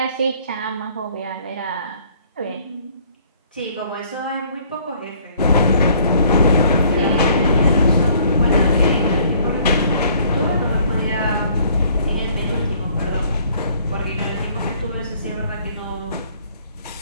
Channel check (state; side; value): inverted; both; correlation -0.59